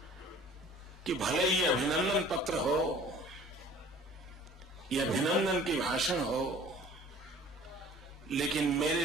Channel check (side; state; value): right; noise; hum, 29 dB below the sound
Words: कि भले ही अभिनंदन पत्र हो, ये अभिनंदन की भाषण हो, लेकिन मेरे